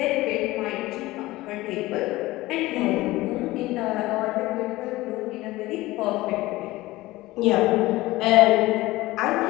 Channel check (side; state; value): right; quieter; 18.6 dB